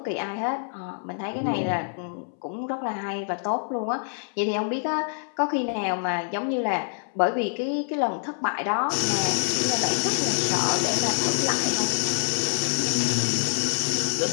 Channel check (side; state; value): right; silent; 61 dB below the other